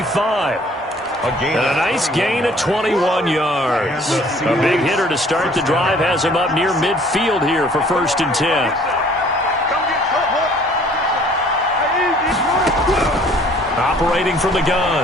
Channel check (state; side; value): normal; both; correlation 0.56